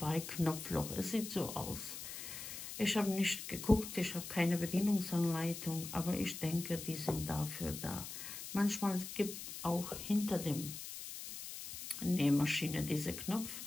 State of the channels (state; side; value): noise; left; hiss, 9 dB below the sound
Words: Knopfloch. Es sieht so aus. Ich habe nicht geguckt, ich habe keine Bedienungsanleitung, aber ich denke, die sind dafür da. Manchmal gibt auch hinter dem Nähmaschine diese Knopf,